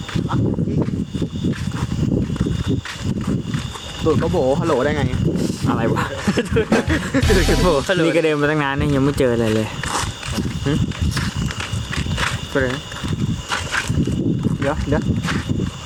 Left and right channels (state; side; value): identical; both; correlation 1.00